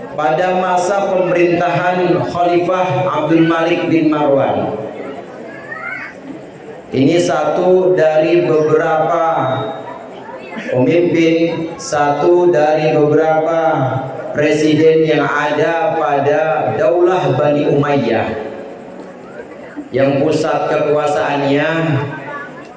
pada masa pemerintahan Khalifah Abdul Malik bin Marwan, ini satu dari beberapa pemimpin, satu dari beberapa presiden yang ada pada Daulah Bani Umayyah yang pusat kekuasaannya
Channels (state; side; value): identical; both; correlation 1.00